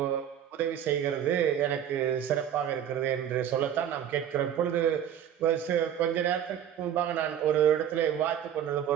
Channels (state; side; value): quieter; left; 9.8 dB